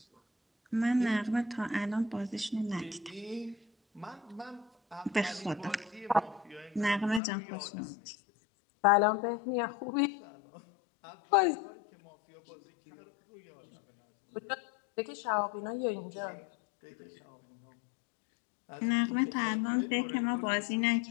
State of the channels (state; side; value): drops out; right; at 7.2 s